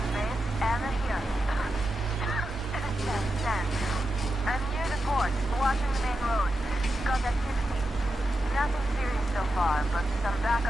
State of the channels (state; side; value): normal; both; correlation 0.88